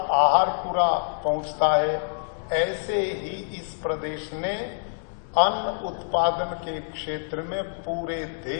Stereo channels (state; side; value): silent; right; digital silence